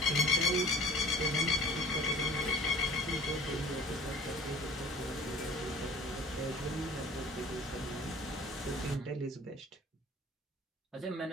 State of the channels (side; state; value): both; normal; correlation 0.47